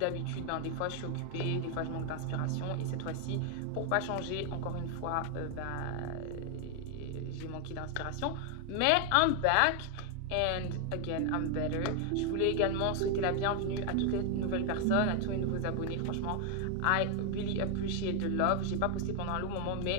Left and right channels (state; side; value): different; both; correlation 0.00